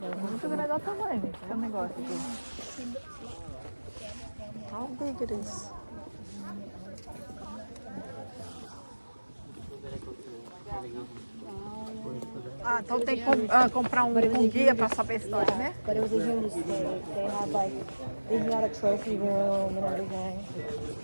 Muito grande, olha o tamanho desse negócio aqui. How big it is. Ah, então tem que comprar um guia para saber a história, né? But it was a huge stage. They had like, they had a trophy room and everything.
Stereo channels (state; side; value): inverted; both; correlation -1.00